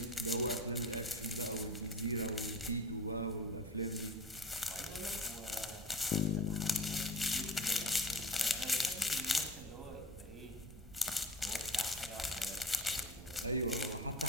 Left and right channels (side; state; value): right; noise; rumble, 16 dB below the sound